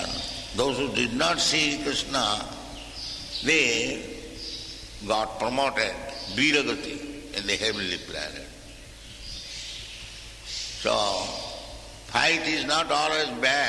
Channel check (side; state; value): both; identical; correlation 1.00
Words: those who did not see Krishna, they got promoted, Viragati, in the heavenly planet. So, fight is not always